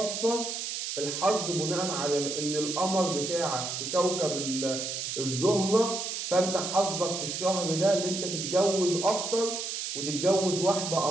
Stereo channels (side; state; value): right; noise; hiss, 4 dB below the sound